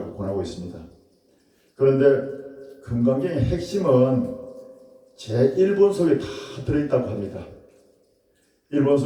권하고 있습니다. 그런데 금강경의 핵심은 제1본 속에 다 들어있다고 합니다. 1본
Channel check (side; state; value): both; identical; correlation 1.00